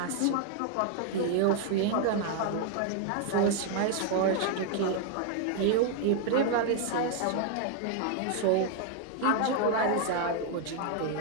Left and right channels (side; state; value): both; different; correlation 0.00